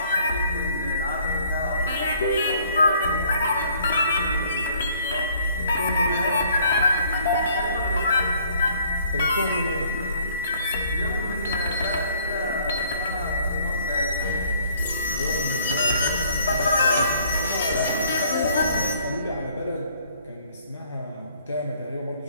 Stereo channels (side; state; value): both; inverted; correlation -0.60